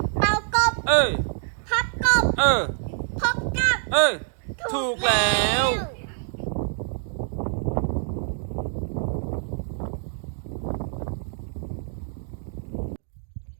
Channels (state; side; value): silent; left; 61 dB below the other